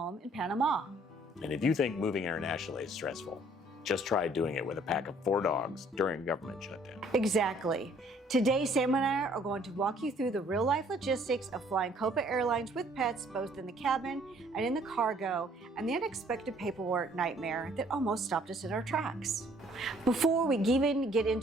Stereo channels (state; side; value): normal; both; correlation 0.60